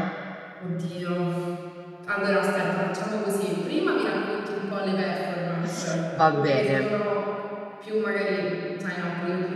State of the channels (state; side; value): identical; both; correlation 1.00